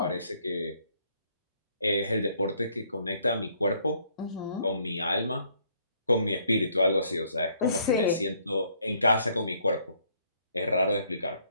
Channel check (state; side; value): inverted; both; correlation -0.66